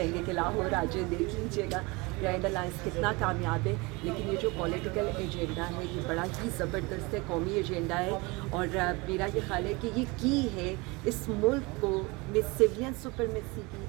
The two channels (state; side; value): quieter; left; 25.6 dB